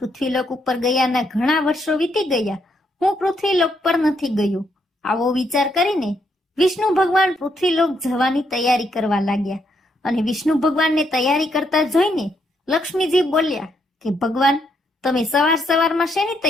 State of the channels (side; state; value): both; normal; correlation 0.75